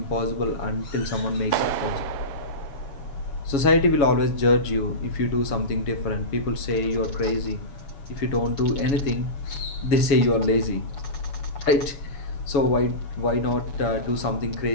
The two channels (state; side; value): late; right; 7.2 ms